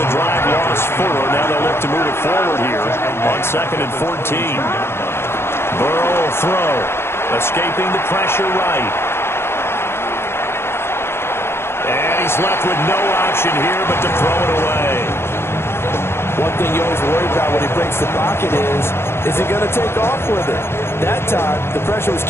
the drive lost 4. Now they'll look to move it forward here on 2nd and 14. Burrow will throw, escaping the pressure right. And he's left with no option here but to throw it away. One thing you always worry about when he breaks the pocket is he going to take off with it? That time, the pressure was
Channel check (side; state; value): right; late; 0.12 ms